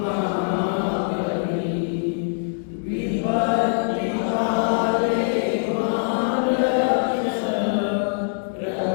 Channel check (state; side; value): silent; right; digital silence